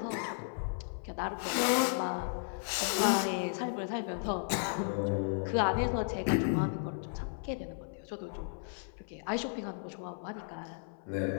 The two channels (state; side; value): silent; right; 55 dB below the other